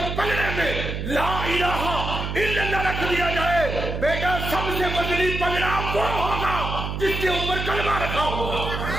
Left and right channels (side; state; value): right; noise; hum, 4 dB below the sound